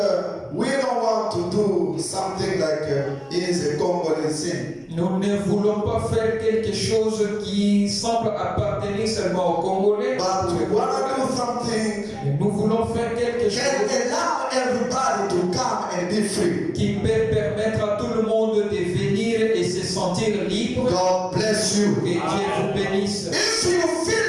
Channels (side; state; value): both; identical; correlation 1.00